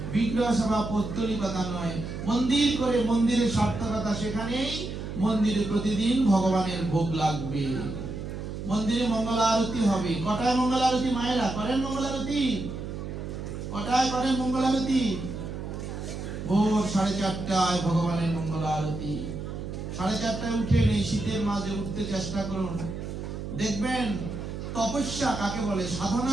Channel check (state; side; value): noise; right; hum, 7 dB below the sound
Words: বিগ্রহ সেবা পৌত্তলিকতা নয়। মন্দির করে মন্দিরের সার্থকতা সেখানেই, মন্দিরে প্রতিদিন ভগবানের ভোগ লাগবে, মন্দিরে মঙ্গল আরতি হবে। কটায় মঙ্গল আরতি মায়েরা করেন? মঙ্গল আরতি কটায় করেন? মঙ্গল আরতি ভোর 4:30টায় ভগবানের মঙ্গল আরতি। 4:30টায় উঠে এই শীতের মাঝে উঠতে চেষ্টা করুন। দেখবেন তপস্যা কাকে বলে,